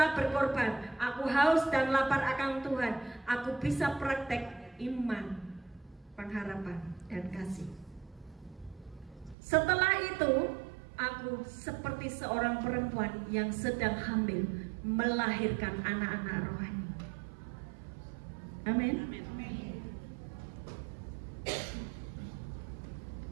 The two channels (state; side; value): drops out; left; at 9.3 s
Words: berkorban. Aku haus dan lapar akan Tuhan. Aku bisa praktek iman, pengharapan, dan kasih. Setelah itu, aku seperti seorang perempuan yang sedang hamil melahirkan anak-anak rohani. Amin.